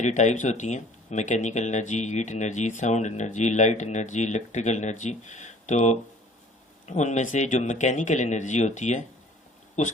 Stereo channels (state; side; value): normal; both; correlation 0.51